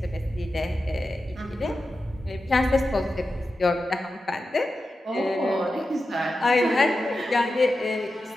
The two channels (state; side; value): normal; both; correlation 0.91